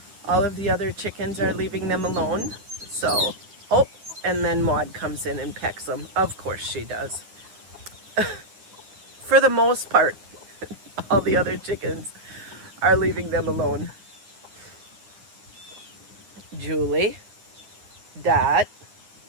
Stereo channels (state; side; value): late; left; 9.9 ms